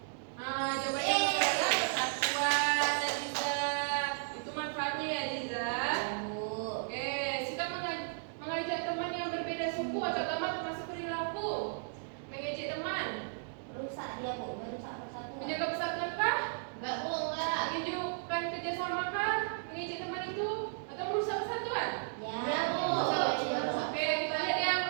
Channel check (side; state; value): left; silent; digital silence